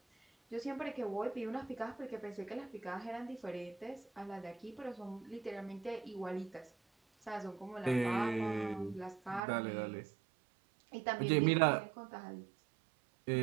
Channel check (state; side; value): drops out; left; at 9.4 s